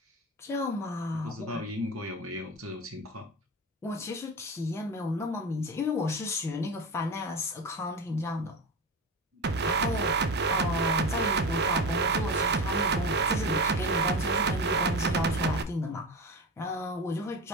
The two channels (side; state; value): both; normal; correlation 0.26